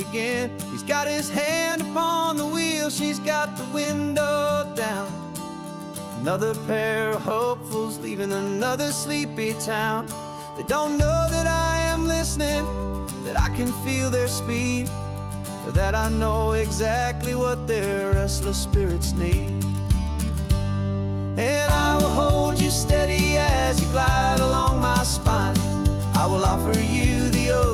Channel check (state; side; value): identical; both; correlation 1.00